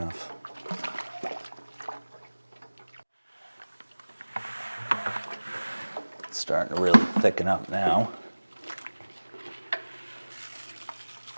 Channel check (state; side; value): inverted; both; correlation -1.00